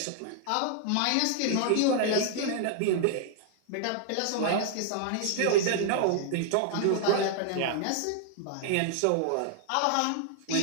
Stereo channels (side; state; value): both; different; correlation 0.00